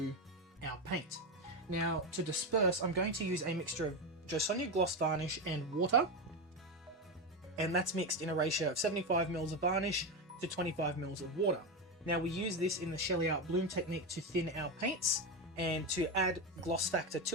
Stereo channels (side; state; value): both; normal; correlation 0.14